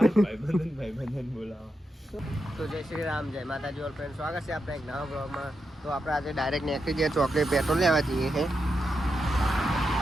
બોલાવા. તો જય શ્રી રામ, જય માતાજી ઓલ ફ્રેન્ડ, સ્વાગત છે આપણે એક નવા બ્લોગમાં. તો આપણે આજે ડાયરેક્ટ નીકળી જઈએ ચોકડી પેટ્રોલ લેવા જઈએ છે.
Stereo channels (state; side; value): normal; both; correlation 0.86